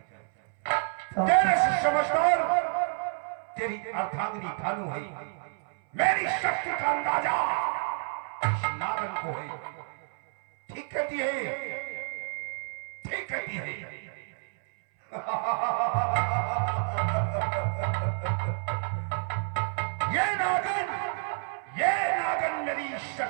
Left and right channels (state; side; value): silent; left; 58 dB below the other